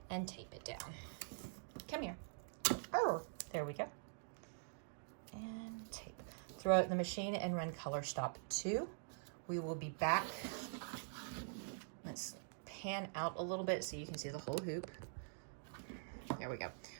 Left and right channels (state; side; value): silent; left; digital silence